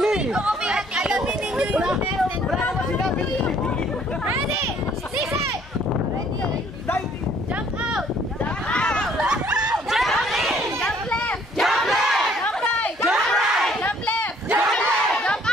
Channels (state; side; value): normal; both; correlation 0.61